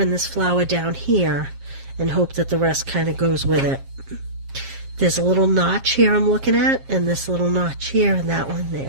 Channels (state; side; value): late; left; 7.4 ms